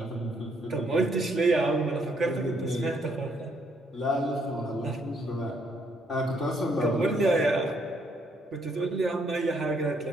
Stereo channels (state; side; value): normal; both; correlation 0.71